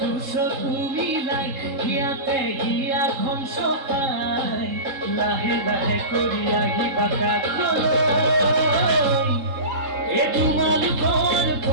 মিলাই হিয়াতে হিয়াখন চপাই লাহে লাহে কৰি আহিবা কাষলৈ এ তোমালোকৰ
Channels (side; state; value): left; late; 3.7 ms